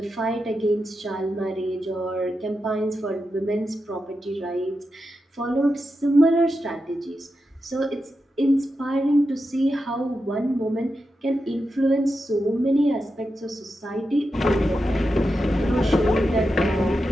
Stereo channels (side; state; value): both; normal; correlation 0.89